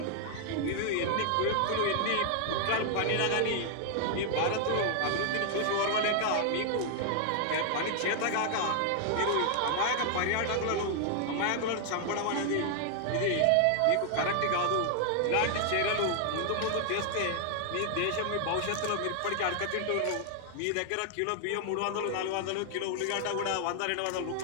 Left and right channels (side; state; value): both; different; correlation 0.00